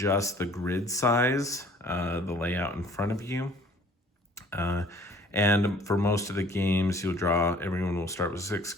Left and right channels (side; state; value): both; normal; correlation 0.54